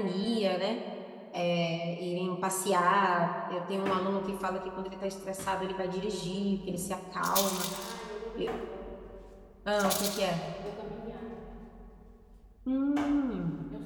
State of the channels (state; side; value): identical; both; correlation 1.00